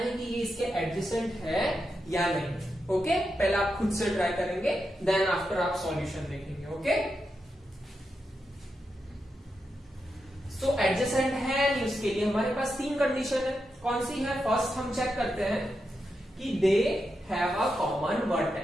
कि ये इसके एडजेसेंट है या नहीं। ओके, पहले आप खुद से ट्राई करेंगे, देन आफ्टर आप सॉल्यूशन देखेंगे। ओके, तो एडजेसेंट है नहीं, उसके लिए हमारे पास तीन कंडीशन है। कौन सी है, फर्स्ट हम चेक करते हैं कि दे हैव अ कॉमन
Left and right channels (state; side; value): normal; both; correlation 0.86